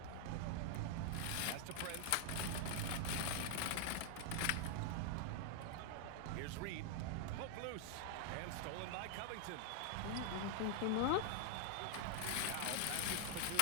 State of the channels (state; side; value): different; both; correlation 0.00